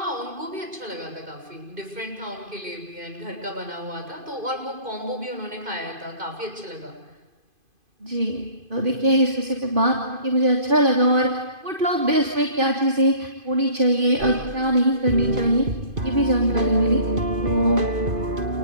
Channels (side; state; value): left; late; 2.5 ms